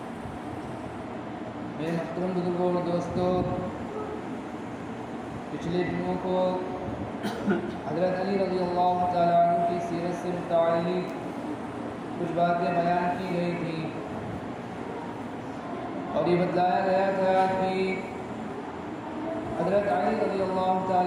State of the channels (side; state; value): both; identical; correlation 1.00